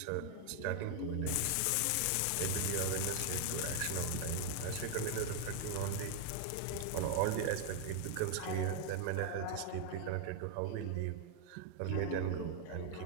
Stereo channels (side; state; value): both; different; correlation 0.00